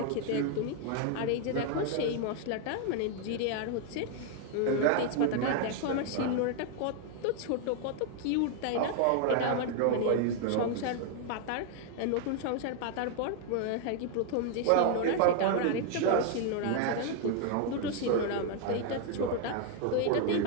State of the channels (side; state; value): both; different; correlation 0.00